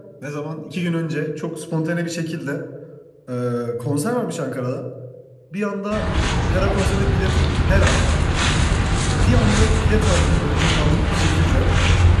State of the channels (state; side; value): identical; both; correlation 1.00